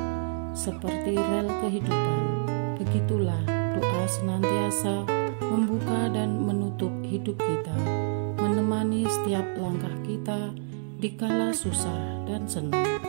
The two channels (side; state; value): left; silent; digital silence